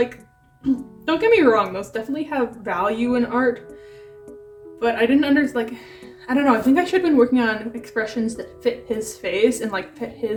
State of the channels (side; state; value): both; identical; correlation 1.00